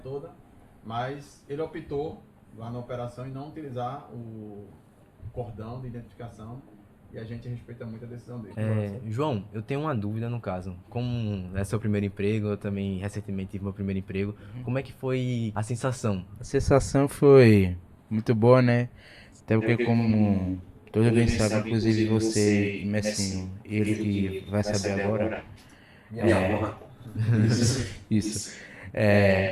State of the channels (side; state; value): both; identical; correlation 1.00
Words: toda. Mas ele optou lá na operação em não utilizar o cordão de identificação. E a gente respeita muito a decisão dele. João, eu tenho uma dúvida no caso. Como é seu primeiro emprego, eu também recentemente tive meu primeiro emprego. Como é que foi a sensação? A sensação foi muito boa, né? Até porque como todos bem sabem, inclusive você e Messinho, ele que vai saber agora. Isso.